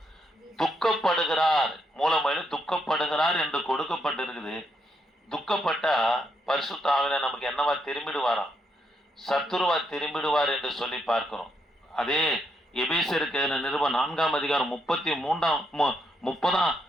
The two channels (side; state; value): both; normal; correlation 0.79